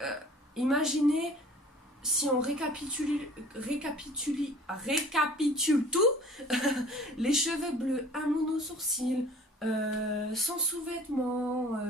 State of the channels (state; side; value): normal; both; correlation 0.48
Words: imaginez si on récapitule tout, les cheveux bleus, un mono sourcil, sans sous-vêtements,